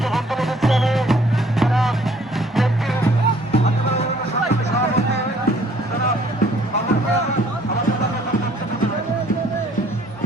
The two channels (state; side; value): normal; both; correlation 0.60